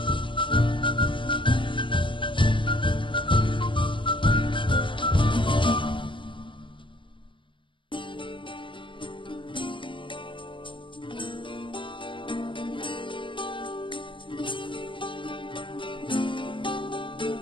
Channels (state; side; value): late; right; 0.24 ms